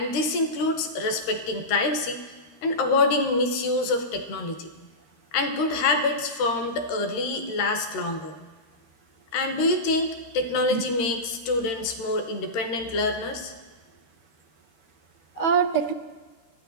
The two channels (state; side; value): late; right; 13 ms